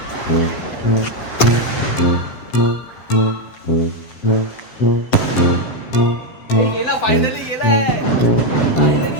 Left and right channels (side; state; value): right; late; 7.4 ms